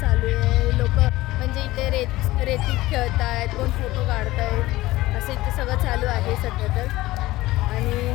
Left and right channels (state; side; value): quieter; right; 17.9 dB